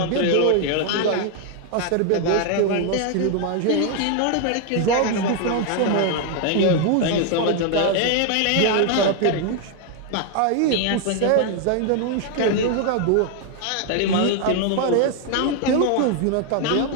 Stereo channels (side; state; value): both; different; correlation 0.00